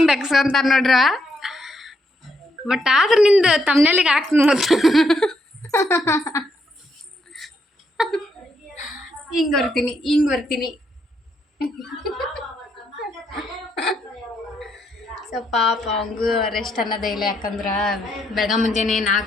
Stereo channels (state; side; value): normal; both; correlation 0.77